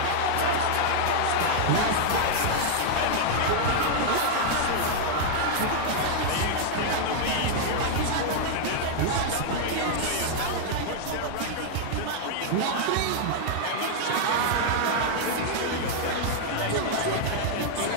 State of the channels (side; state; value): both; different; correlation -0.01